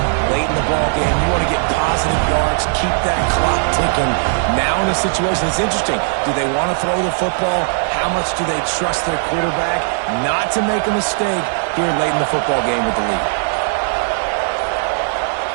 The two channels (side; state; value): left; silent; digital silence